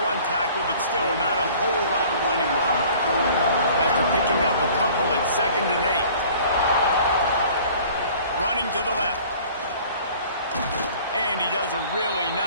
one tackle, but still not a whole lot of running room. After picking up a couple at 2nd and 8. Running to the left. And he does a really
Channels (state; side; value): inverted; both; correlation -0.50